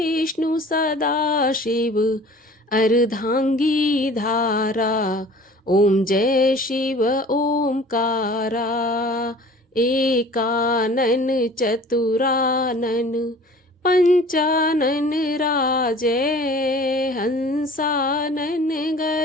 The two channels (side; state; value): both; normal; correlation 0.46